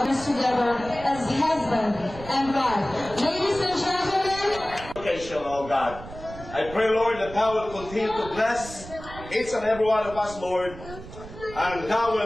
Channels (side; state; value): right; noise; rumble, 14 dB below the sound